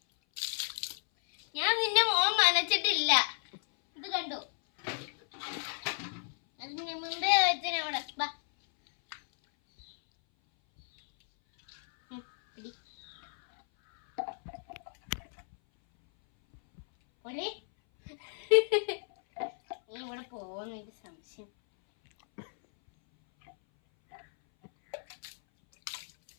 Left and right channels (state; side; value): silent; right; 56 dB below the other